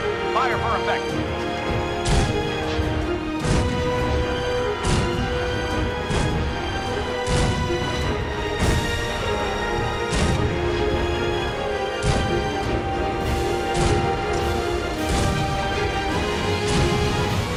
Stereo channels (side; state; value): both; identical; correlation 1.00